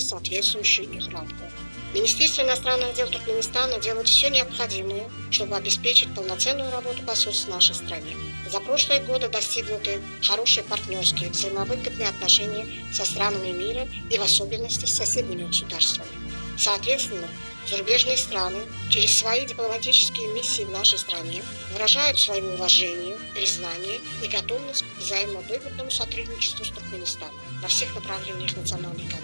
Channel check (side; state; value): both; inverted; correlation -1.00